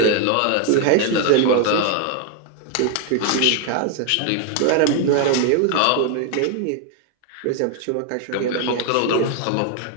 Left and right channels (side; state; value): both; different; correlation 0.01